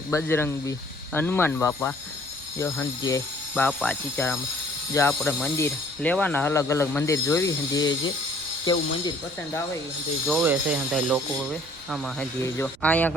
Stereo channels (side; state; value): right; noise; rumble, 24 dB below the sound